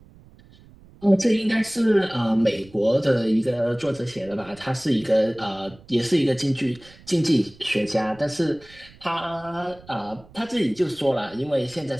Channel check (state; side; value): noise; right; rumble, 24 dB below the sound